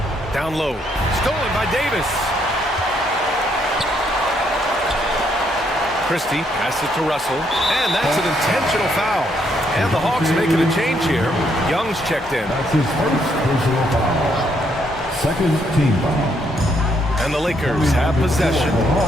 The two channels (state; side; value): normal; both; correlation 0.73